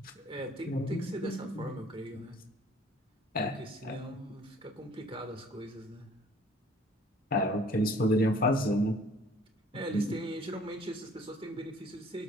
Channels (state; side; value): normal; both; correlation 0.54